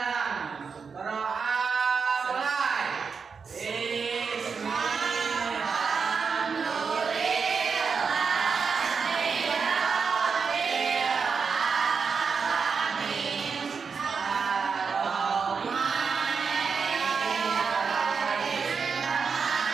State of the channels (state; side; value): quieter; left; 5.5 dB